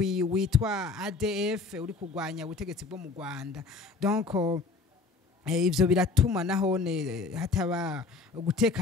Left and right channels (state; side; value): quieter; right; 4.3 dB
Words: witwa ADF uri kugwanya ubutegetsi bwo mu Rwanda. Donc ivyo biratuma nahone hataba